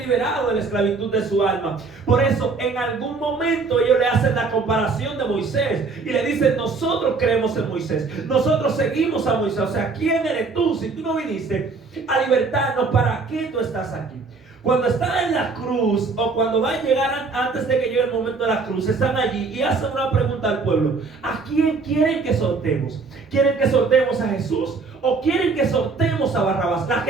de la esclavitud de su alma. Por eso en algún momento ellos le hacen la comparación de Moisés y le dicen, nosotros creemos en Moisés, nosotros seguimos a Moisés. O sea, ¿quién eres tú? Si tú no viniste a libertarnos, ¿para qué tú estás aquí? Cuando están en la cruz o cuando van a llegar antes de que llegue el momento de la cruz, están allí y hacen una pregunta al pueblo: ¿a quién quieren que soltemos? ¿Quieren que soltemos a Jesús o quieren que soltemos a Barrabás? La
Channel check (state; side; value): quieter; left; 4.3 dB